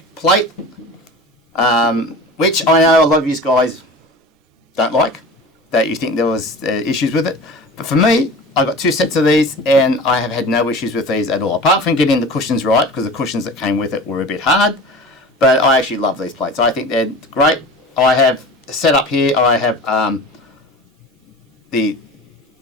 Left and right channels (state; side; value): normal; both; correlation 0.37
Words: plate, which I know a lot of you guys don't like, that you think there was issues with it. But for me, I got 2 sets of these and I have had no issues with these at all, apart from getting the cushions right, because the cushions that came with it were a bit hard. But I actually love these plates. I think they're great. I have set up here, I have the